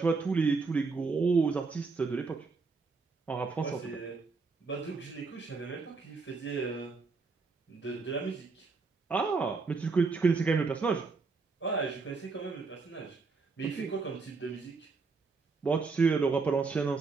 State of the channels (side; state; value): left; quieter; 4.4 dB